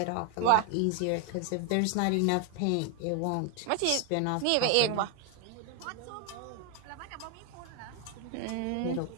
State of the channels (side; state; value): both; different; correlation 0.01